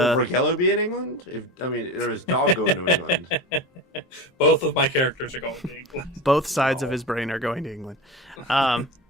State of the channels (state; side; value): normal; both; correlation 0.28